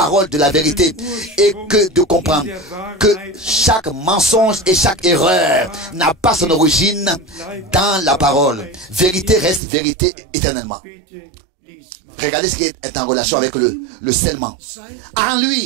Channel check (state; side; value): drops out; left; at 9.6 s